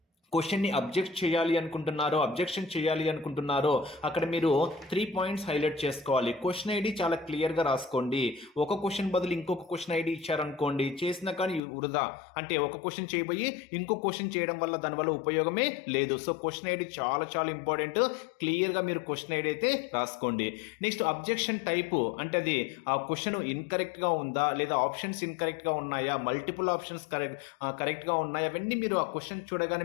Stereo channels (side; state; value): right; drops out; at 11.6 s